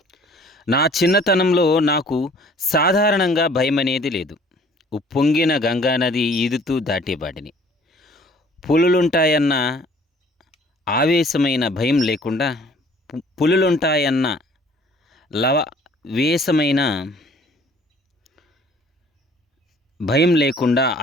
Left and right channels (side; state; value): both; normal; correlation 0.54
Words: నా చిన్నతనంలో నాకు సాధారణంగా భయం అనేది లేదు. ఉప్పొంగిన గంగానది ఈదుతూ దాటేవాడిని. పులులుంటాయన్న ఆవేశమైన భయం లేకుండా, పులులుంటాయన్న లవవేశమైన భయం లేకుండా